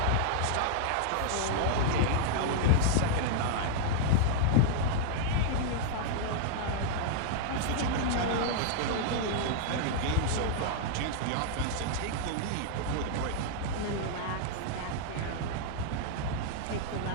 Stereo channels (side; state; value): both; different; correlation -0.01